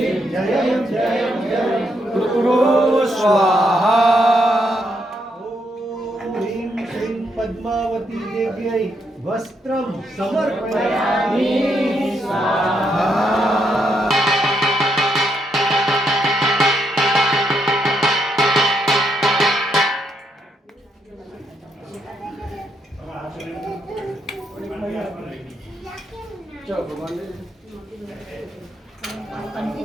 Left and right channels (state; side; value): normal; both; correlation 0.78